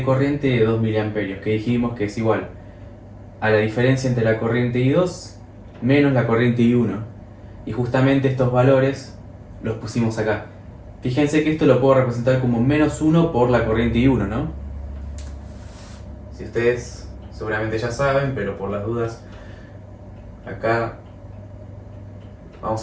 corriente de 2 miliamperios, que dijimos que es igual a la diferencia entre la corriente I2 menos la corriente I1. Y justamente estos valores los pusimos acá. Fíjense que esto lo puedo representar como menos 1 por la corriente I1, ¿no? Si ustedes seguramente ya saben, pero por las dudas, acá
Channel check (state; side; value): identical; both; correlation 1.00